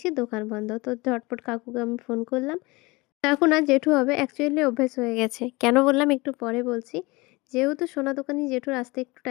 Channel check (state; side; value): quieter; right; 24.0 dB